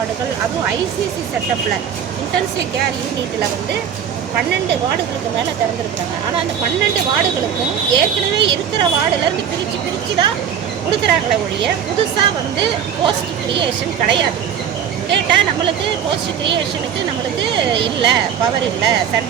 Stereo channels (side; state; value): left; quieter; 8.4 dB